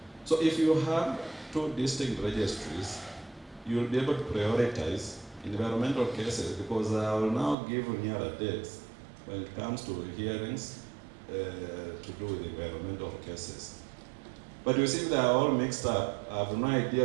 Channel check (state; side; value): drops out; left; at 7.6 s